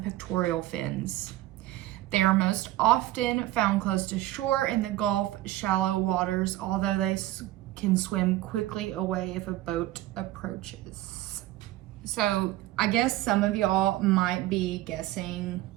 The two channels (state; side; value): quieter; left; 16.0 dB